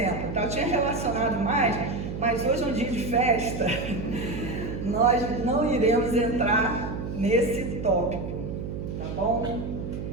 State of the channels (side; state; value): right; noise; hum, 6 dB below the sound